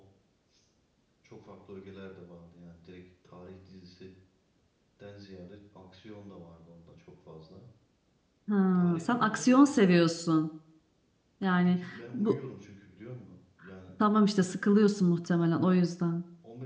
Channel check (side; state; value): both; identical; correlation 1.00